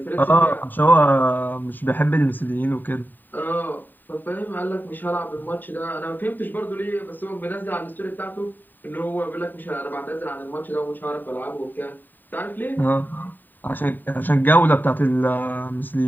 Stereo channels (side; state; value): right; late; 0.090 ms